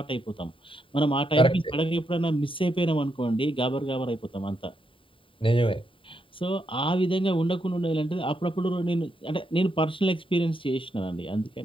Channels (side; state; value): right; late; 0.25 ms